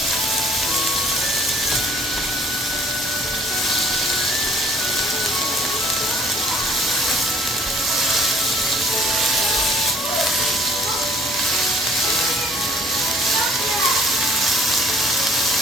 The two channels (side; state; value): both; normal; correlation 0.56